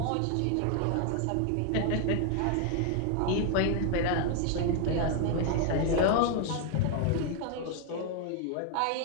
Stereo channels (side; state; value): both; different; correlation 0.00